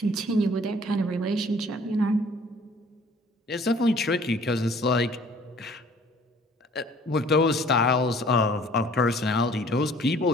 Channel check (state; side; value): normal; both; correlation 0.54